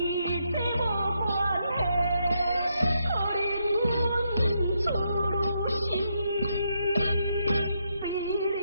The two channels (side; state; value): both; inverted; correlation -0.79